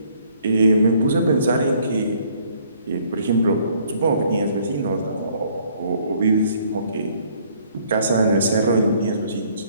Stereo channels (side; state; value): both; inverted; correlation -0.62